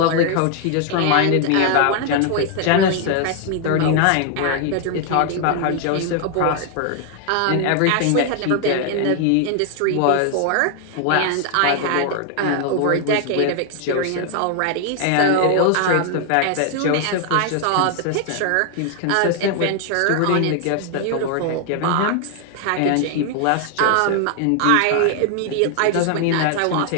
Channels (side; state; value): both; different; correlation 0.00